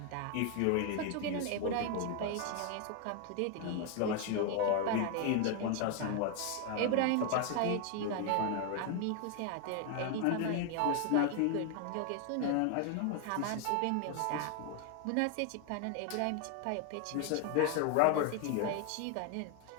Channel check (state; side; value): different; both; correlation 0.01